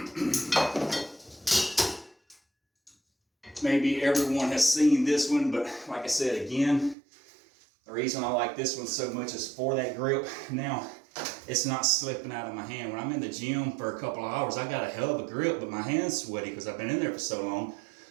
Maybe everyone has seen this one, but like I said again, the reason I like this one so much is for that grip. Now, it's not slipping out of my hand. When I'm in the gym for a couple of hours, I got a hell of a grip, but my hand's sweaty because I've been in there for so long.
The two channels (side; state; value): left; drops out; at 7.0 s